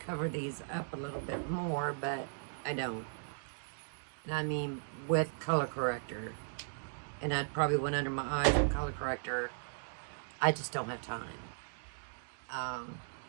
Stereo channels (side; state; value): left; silent; digital silence